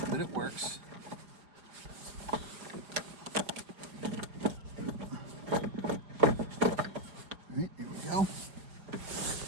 but it works. All right, there we go. All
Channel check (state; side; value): late; left; 4.9 ms